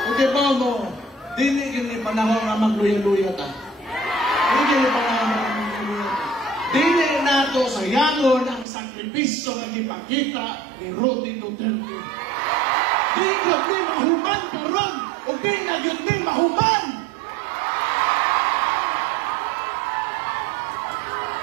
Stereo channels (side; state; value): left; drops out; at 8.7 s